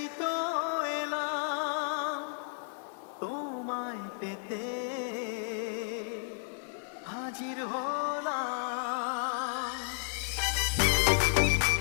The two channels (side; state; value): right; silent; digital silence